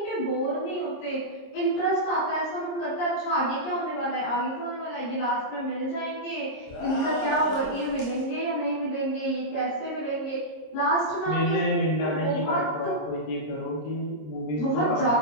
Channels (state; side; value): late; right; 26 ms